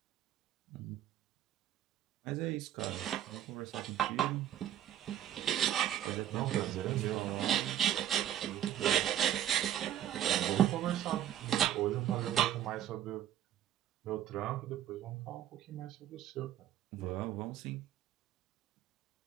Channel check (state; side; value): quieter; left; 11.4 dB